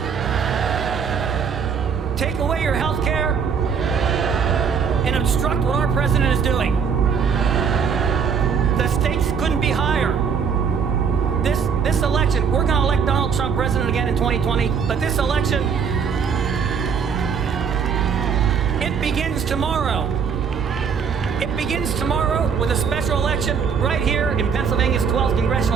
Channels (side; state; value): left; quieter; 6.5 dB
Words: take away your health care, and obstruct what our president is doing. The stakes couldn't be higher. This election, we're going to elect Donald Trump president again in 2020, but this election, it begins tomorrow. It begins tomorrow with a special election right here in Pennsylvania's 12th